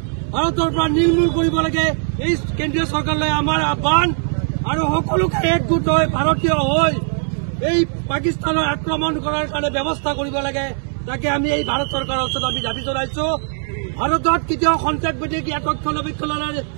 ভাৰতৰ পৰা নিৰ্মূল কৰিব লাগে এই কেন্দ্ৰীয় চৰকাৰলৈ আমাৰ আহ্বান আৰু সকলোকে একগোট হৈ ভাৰতীয় হৈ এই পাকিস্তানৰ আক্ৰমণ কৰাৰ কাৰণে ব্যৱস্থা কৰিব লাগে। তাকে আমি এই ভাৰত চৰকাৰৰ ওচৰত আমি দাবী জনাইছো। ভাৰতত কেতিয়াও সন্ত্ৰাসবাদীক ইয়াত ৰক্ষণাবেক্ষণৰ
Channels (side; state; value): left; silent; 64 dB below the other